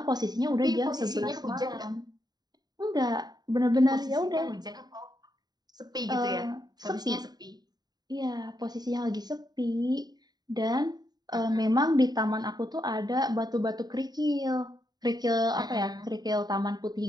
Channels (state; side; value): late; left; 0.20 ms